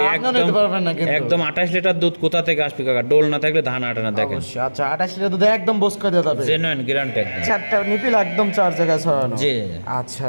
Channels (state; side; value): inverted; both; correlation -1.00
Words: আপনিও নিতে পারবেন না কিন্তু। একদম 28 লিটার দুধ কোথা থেকে আসবে কাকা, ডোল না থাকলে ধান আটে না দেখেন। অবশ্যই। আচ্ছা 28 লিটার দুধ একদম বস করে দেওয়া যাবে, জেনুইন গ্যারান্টি একদম। চারটা নিপিল একদম 4 জায়গায় ছড়ানো। জি আচ্ছা